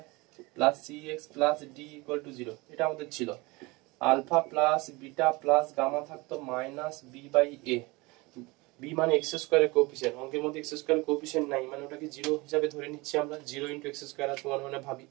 plus c x plus d equal to 0, এটা আমাদের ছিল, alpha plus beta plus gamma থাকতো minus B by a, b মানে এক্স স্কোয়ারের কোএফিসিয়েন্ট, অঙ্কের মধ্যে এক্স স্কোয়ারের কোএফিসিয়েন্ট নাই মানে ওটাকে 0 হিসাবে ধরে নিচ্ছি আমরা, 0 ইনটু এক্স স্কোয়ার আর তোমার মানে ভাবি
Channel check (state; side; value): quieter; left; 24.2 dB